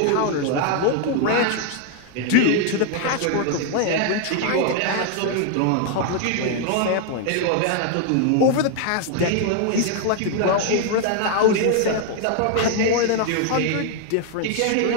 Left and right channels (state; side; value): different; both; correlation 0.00